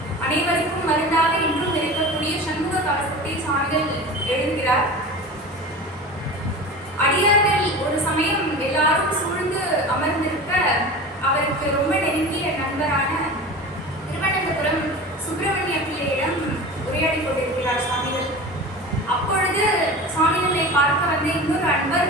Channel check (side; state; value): both; normal; correlation 0.33